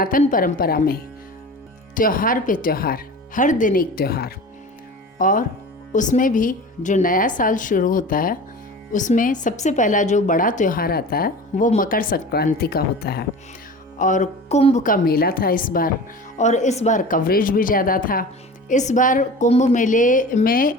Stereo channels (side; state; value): both; normal; correlation 0.36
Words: परंपरा में त्योहार पे त्योहार, हर दिन एक त्यौहार, और उसमें भी जो नया साल शुरू होता है उसमें सबसे पहला जो बड़ा त्यौहार आता है वो मकर संक्रांति का होता है। और कुंभ का मेला था इस बार, और इस बार कवरेज भी ज़्यादा था। इस बार कुंभ मेले में